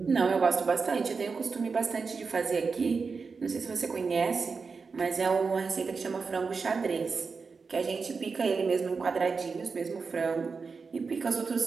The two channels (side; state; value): left; quieter; 4.9 dB